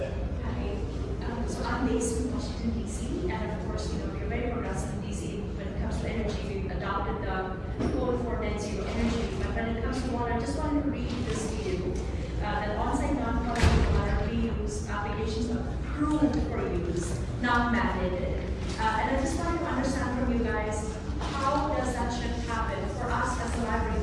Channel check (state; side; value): identical; both; correlation 1.00